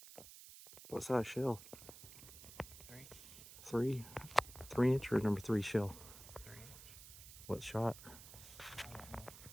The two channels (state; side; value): noise; right; hiss, 15 dB below the sound